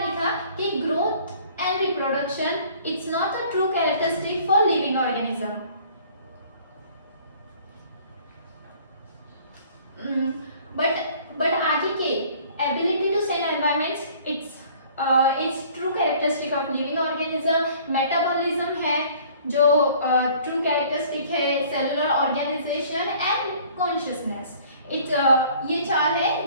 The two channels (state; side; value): inverted; both; correlation -0.53